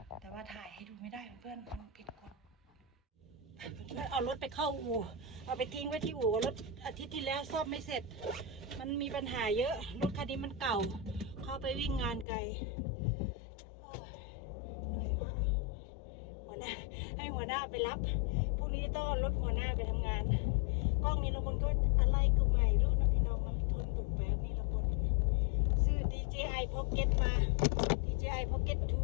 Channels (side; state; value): right; drops out; at 12.2 s